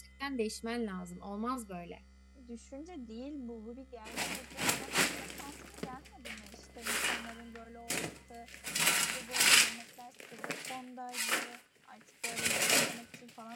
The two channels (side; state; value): both; identical; correlation 1.00